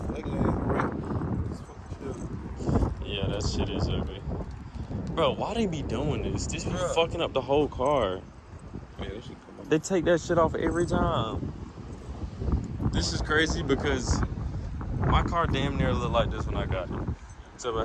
ugly ass red. It's fucking shit. Yeah, that shit is ugly. Bro, why they be doing this? This be Bruh. fucking up the whole car. Yeah, that shit come up. They take that shit off every time. This is crazy because my car damn near looked like this when I got it. Except I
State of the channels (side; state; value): both; identical; correlation 1.00